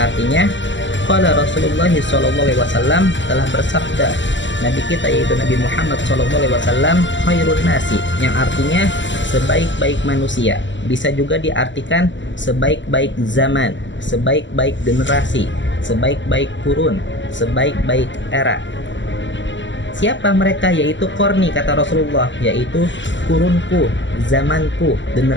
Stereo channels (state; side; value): late; right; 0.54 ms